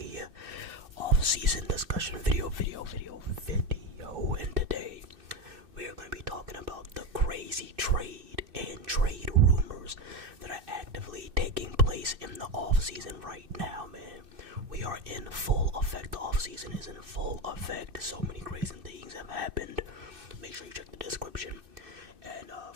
off-season discussion video. And today, we are going to be talking about the crazy trade and trade rumors that are actively taking place in the off-season right now, man. We are in full effect. The off-season is in full effect. So many crazy things have happened. Make sure you check the description and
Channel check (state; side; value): late; left; 2.6 ms